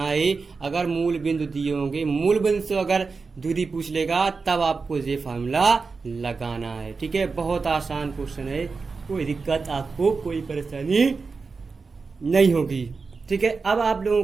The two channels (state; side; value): quieter; left; 4.5 dB